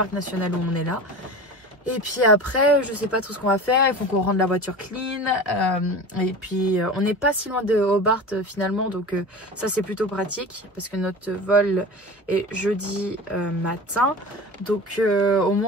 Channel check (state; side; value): normal; both; correlation 0.33